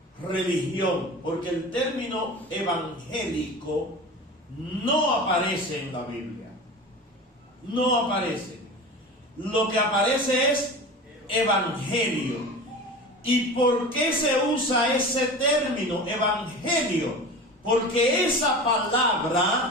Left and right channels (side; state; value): both; normal; correlation 0.33